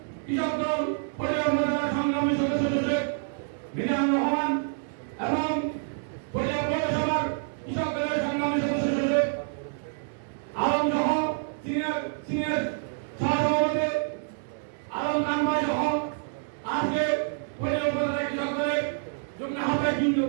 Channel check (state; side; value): silent; left; 60 dB below the other